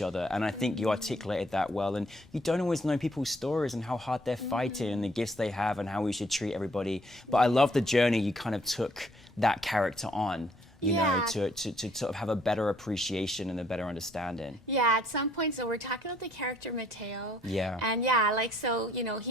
other. And I think you articulated that well. And you don't always know people's stories and how hard they're fighting and the gifts they have and how we should treat everybody. But I love the journey you kind of took that character on, you know, to sort of have a better appreciation and a better understanding. Yeah, at some point, so we're talking about the character Mateo. Yeah. And yeah, like, so, you know,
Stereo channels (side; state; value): both; normal; correlation 0.65